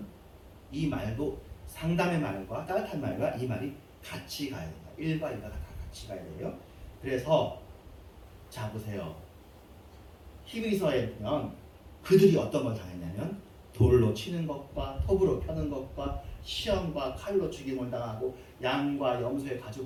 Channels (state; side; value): identical; both; correlation 1.00